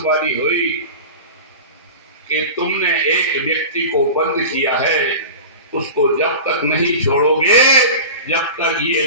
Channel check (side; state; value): both; inverted; correlation -0.32